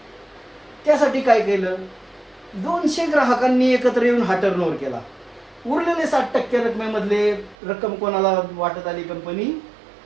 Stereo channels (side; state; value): left; drops out; at 7.6 s